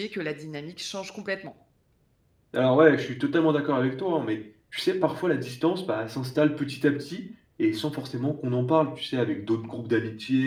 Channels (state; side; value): identical; both; correlation 1.00